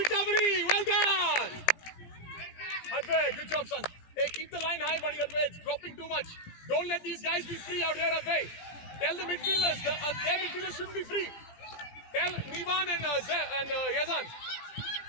Well done. Advay, good job, son. Hey, keep the line high, buddy. Advay, it's dropping too much. Don't let these guys be free out here, Advay. Tell the midfielders, their midfielders shouldn't be free. Tell Nivan and Yazan.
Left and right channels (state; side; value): late; right; 18 ms